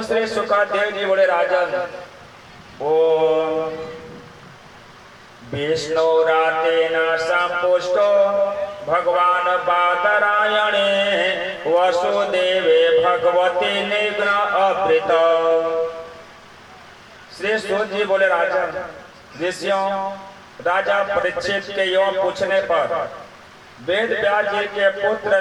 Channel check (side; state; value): both; identical; correlation 1.00